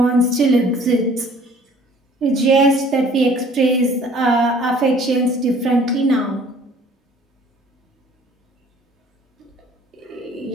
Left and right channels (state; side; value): normal; both; correlation 0.54